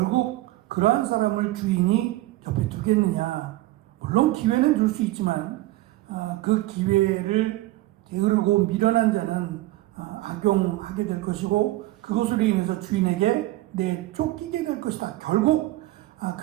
그러한 사람을 주인이 옆에 두겠느냐. 물론 기회는 줄 수 있지만 그 기회를 게으르고 미련한 자는 악용하게 될 것이고 그것으로 인해서 주인에게 내쫓기게 될 것이다. 결국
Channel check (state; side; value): quieter; left; 17.4 dB